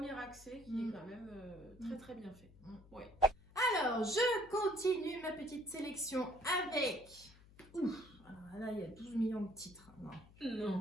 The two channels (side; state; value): left; noise; hum, 23 dB below the sound